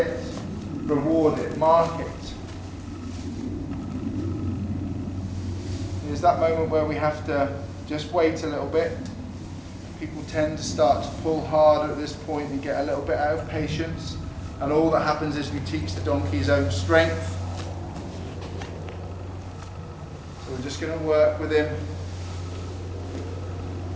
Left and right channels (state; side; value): identical; both; correlation 1.00